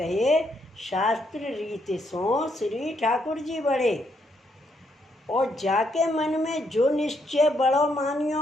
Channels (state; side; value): normal; both; correlation 0.75